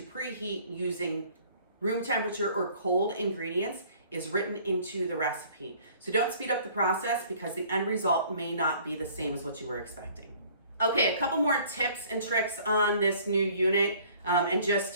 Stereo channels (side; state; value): both; inverted; correlation -0.54